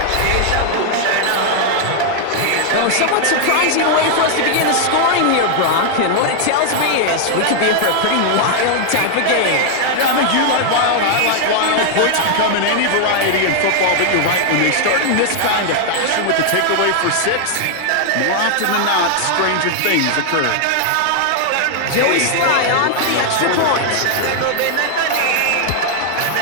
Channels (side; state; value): both; different; correlation 0.00